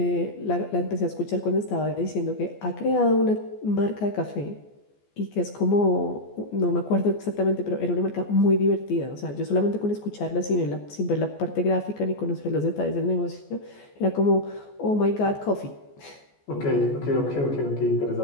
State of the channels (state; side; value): late; right; 14 ms